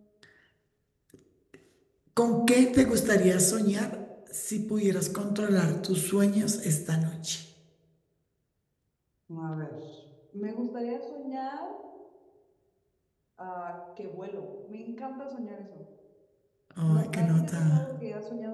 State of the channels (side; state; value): both; identical; correlation 1.00